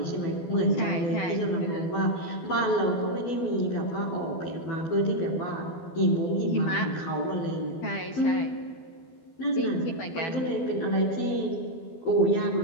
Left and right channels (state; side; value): late; right; 12 ms